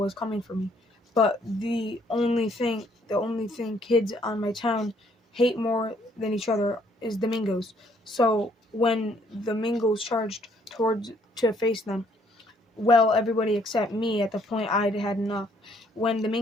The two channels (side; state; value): both; normal; correlation 0.65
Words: coming for me. But the only thing kids on my town hate more than each other is the Mingos. So when the Mingos charged towards to face them, well, everybody except me at the point I'd had enough. When the